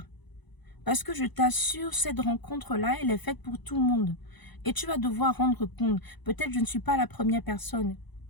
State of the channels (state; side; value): late; right; 1.0 ms